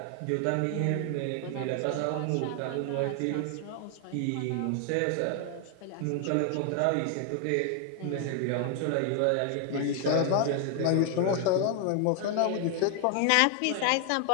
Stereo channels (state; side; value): different; both; correlation 0.00